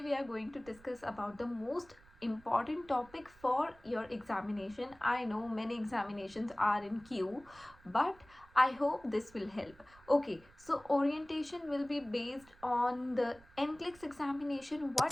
we are going to discuss about the most important topic for your examination. I know many examinations are in queue, but I hope this will help. Okay, so orientation will be based on the NCLEX examination.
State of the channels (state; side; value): noise; right; rumble, 25 dB below the sound